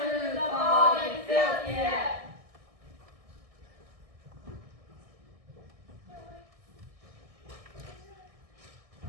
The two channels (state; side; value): late; left; 1.6 ms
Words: through the fog and filthy air.